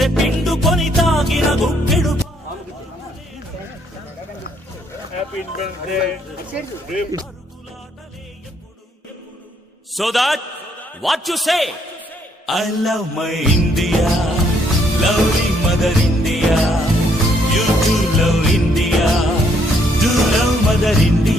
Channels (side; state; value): both; normal; correlation 0.69